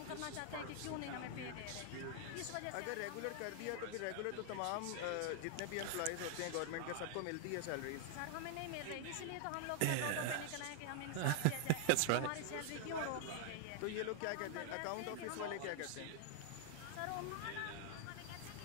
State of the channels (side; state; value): both; different; correlation 0.00